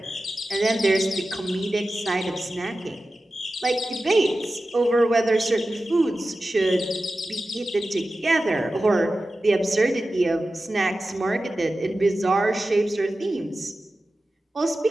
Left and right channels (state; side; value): normal; both; correlation 0.94